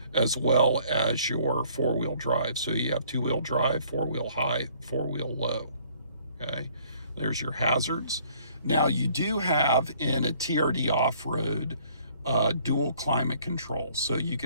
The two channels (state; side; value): inverted; both; correlation -0.60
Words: as well as your four-wheel drive. So you have two-wheel drive, four-wheel high, four-wheel low. Okay, there's your hazards. Now you do have in a TRD off-road dual climate control. So you